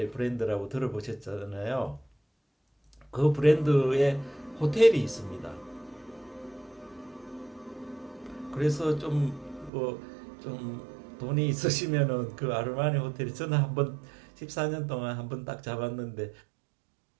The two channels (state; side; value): drops out; left; at 9.7 s